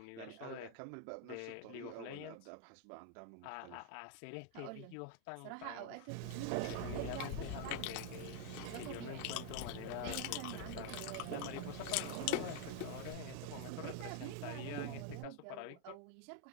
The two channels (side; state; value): both; different; correlation 0.00